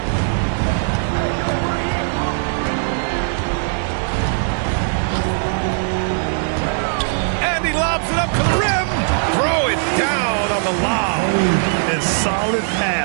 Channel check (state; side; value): silent; left; digital silence